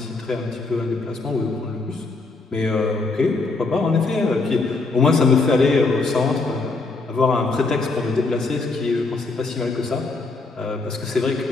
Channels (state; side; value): quieter; right; 3.6 dB